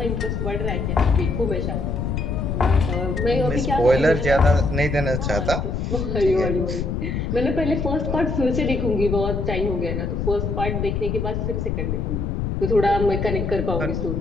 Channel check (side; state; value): left; noise; rumble, 2 dB below the sound